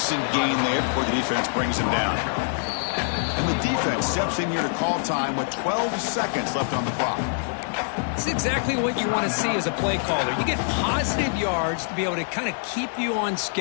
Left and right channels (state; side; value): silent; right; digital silence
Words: gain there before the defense brings him down. And the defense steps in here to call time with 12 seconds left on the clock. It's exactly what you want to see as a play caller. You get positive yards to be able to kind of keep you on